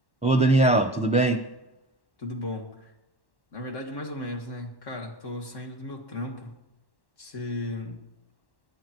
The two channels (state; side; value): late; right; 1.1 ms